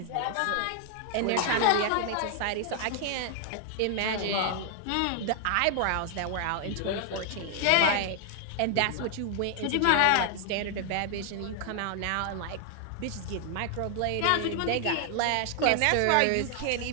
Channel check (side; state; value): both; different; correlation 0.00